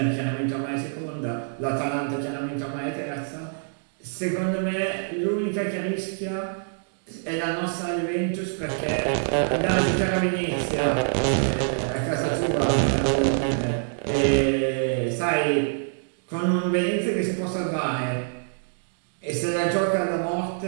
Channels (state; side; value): silent; left; digital silence